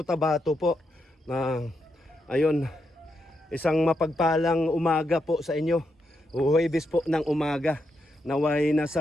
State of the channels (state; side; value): normal; both; correlation 0.82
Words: po. Ayun, isang mapagpalang umaga po sa inyo. Huwebes po ng umaga. Naway